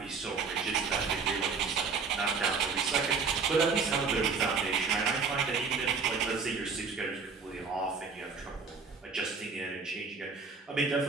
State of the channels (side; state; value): left; quieter; 5.0 dB